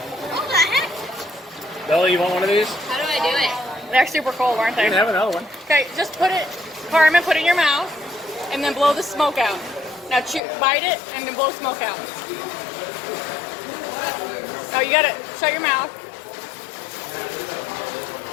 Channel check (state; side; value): drops out; right; at 10.4 s